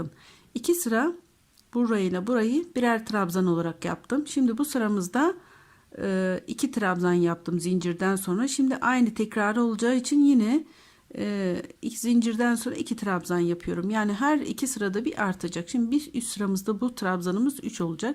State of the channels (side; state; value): both; identical; correlation 1.00